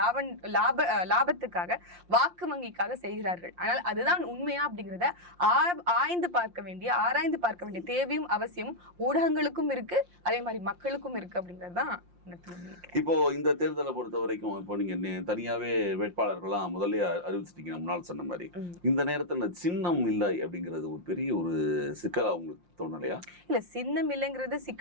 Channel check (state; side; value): late; left; 5.7 ms